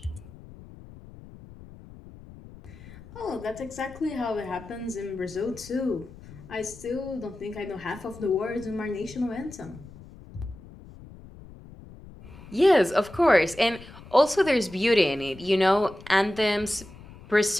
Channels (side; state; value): left; noise; rumble, 18 dB below the sound